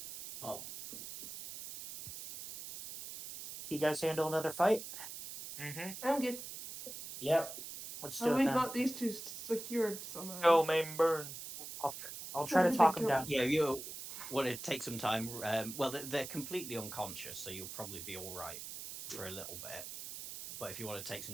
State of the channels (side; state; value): right; noise; hiss, 9 dB below the sound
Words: Oh, You guys handle another fight? Mm-hmm. I'm good. Yep. Let's do And it we then. got these two secured somehow. Go, main burn. I'll try to talk them Go. down. Yeah, you want to take some time. Well, they're completely unconscious, so you'll probably be all right for a little bit. But if you want to take